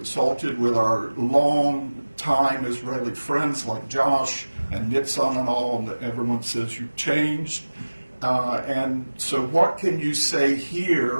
with our long-time Israeli friends like Josh and Nitzan and all, and everyone says you've changed. And so what can you say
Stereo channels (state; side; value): inverted; both; correlation -1.00